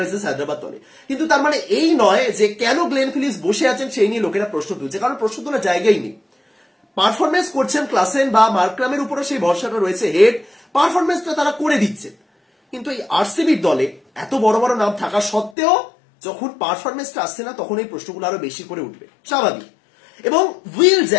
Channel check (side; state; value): right; drops out; at 15.6 s